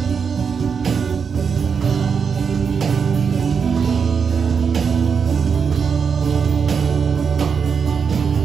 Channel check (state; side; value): quieter; left; 6.2 dB